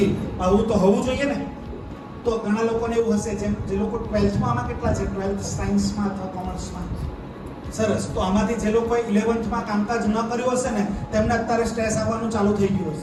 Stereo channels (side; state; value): both; identical; correlation 1.00